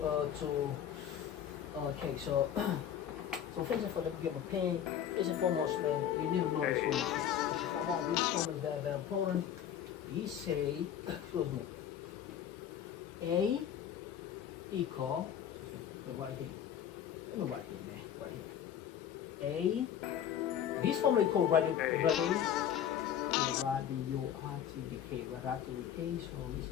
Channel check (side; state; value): right; quieter; 9.6 dB